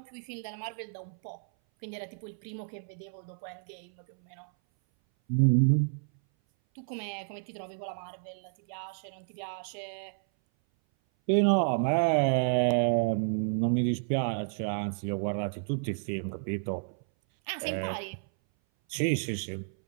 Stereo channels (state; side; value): silent; left; 57 dB below the other